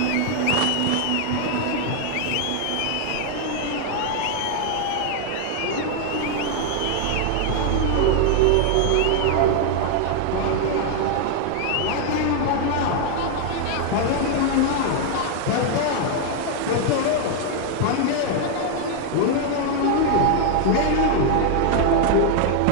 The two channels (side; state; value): both; different; correlation 0.00